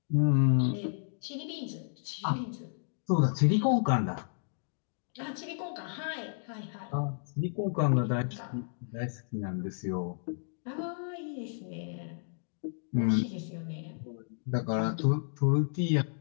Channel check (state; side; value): silent; right; digital silence